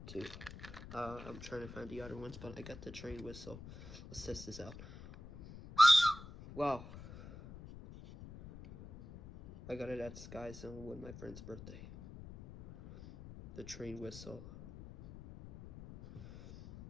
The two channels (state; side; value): noise; left; rumble, 14 dB below the sound